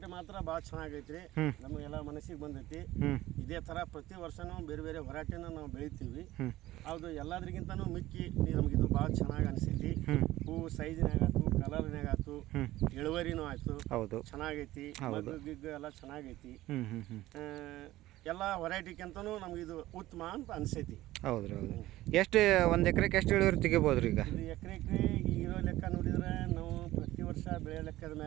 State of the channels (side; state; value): left; quieter; 16.2 dB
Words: ಮಾತ್ರ ಭಾಳ ಚೆನ್ನಾಗೈತ್ರಿ. ನಮಗೆಲ್ಲ ಮನಸ್ಸಿಗೆ ಬಂದೈತಿ. ಇದೇ ಥರ ಪ್ರತಿ ವರ್ಷನೂ ಬೇರೆ ಬೇರೆ ವೆರೈಟಿನ ನಾವು ಬೆಳಿತೀವಿ. ಅದು ಎಲ್ಲದ್ರಿಗಿಂತನೂ ಮಿಕ್ಕಿ ನಮಗಿದು ಭಾಳ ಚೆನ್ನಾಗಿ ಅನಿಸೈತಿ. ಹೂವು ಸೈಜ್ನಾಗ ಆಯ್ತು, ಕಲರ್ನಾಗ ಆಯ್ತು, ಇಳುವರಿನೂ ಆಯ್ತು. ಹೌದು, ಚೆನ್ನಾಗೈತಿ. ಗಿಗ್ಗು ಎಲ್ಲ ಚೆನ್ನಾಗೈತಿ. ಎಲ್ಲ ವೆರೈಟಿಗಿಂತನೂ ನಮಗಿದು ಉತ್ತಮ ಅಂತ ಅನಿಸೈತಿ. ಹೌದ್ರಿ. ಹೌದು. ಎಷ್ಟು ಒಂದು ಎಕರೆಗೆ ಎಷ್ಟು ಇಳುವರಿ ತೆಗಿಬೋದ್ರಿ ಈಗ? ಇದು ಎಕರೆಗೆ ಇರೋ ಲೆಕ್ಕ ನೋಡಿದ್ರೆ ನಾವು ಪ್ರತಿ ವರ್ಷ ಬೆಳೆ ಲೆಕ್ಕದ